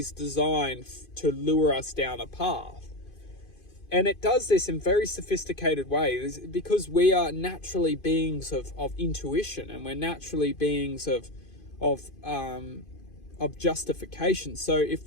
designed to lure us down a path. And it does this in very sophisticated ways because we are naturally beings of intuition, and we're naturally beings of justification. So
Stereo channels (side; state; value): right; late; 2.5 ms